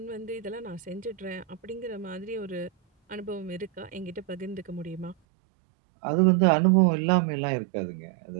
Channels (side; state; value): left; drops out; at 5.2 s